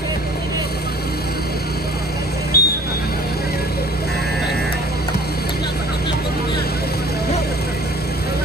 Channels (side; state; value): both; normal; correlation 0.51